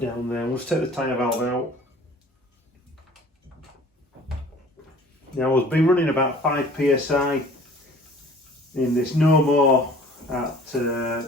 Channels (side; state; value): both; normal; correlation 0.49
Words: there. Let's take the tyre valve out. Now I've been running about 5 psi in this no more at